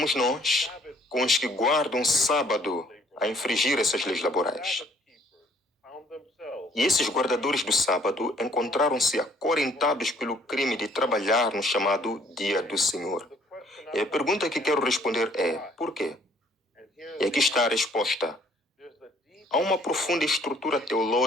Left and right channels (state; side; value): normal; both; correlation 0.61